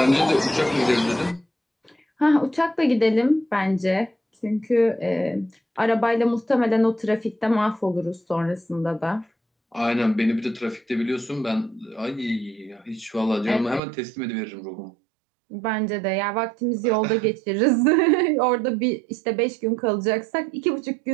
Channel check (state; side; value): drops out; left; at 13.8 s